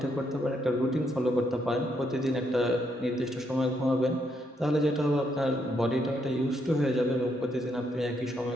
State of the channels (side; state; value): both; normal; correlation 0.76